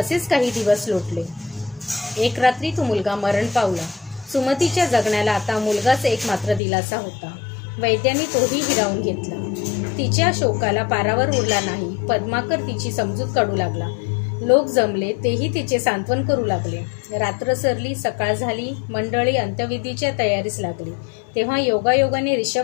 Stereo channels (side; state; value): right; drops out; at 6.6 s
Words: काही दिवस लोटले. एक रात्री तो मुलगा मरण पावला. सुमतीच्या जगण्याला आता मुलगाच एकमात्र दिलासा होता. वैद्यांनी तोही हिरावून घेतला. तिच्या शोकाला पारावर उरला नाही. पद्माकर तिची समजूत काढू लागला. लोक जमले, तेही तिचे सांत्वन करू लागले. रात्र सरली, सकाळ झाली. मंडळी अंत्यविधीच्या तयारीस लागली. तेव्हा योगायोगाने